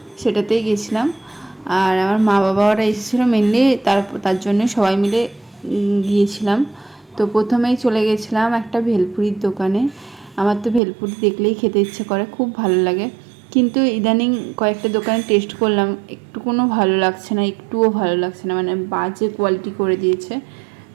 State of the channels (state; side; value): drops out; left; at 10.8 s